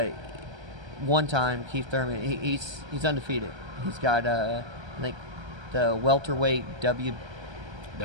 One time Keith Thurman he's undefeated. He's got I think the welterweight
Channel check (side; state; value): left; late; 1.3 ms